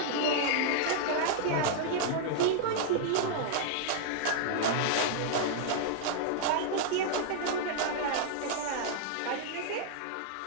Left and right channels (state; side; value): different; both; correlation -0.01